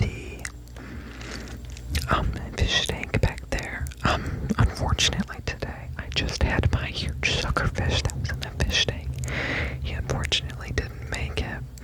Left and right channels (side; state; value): both; identical; correlation 1.00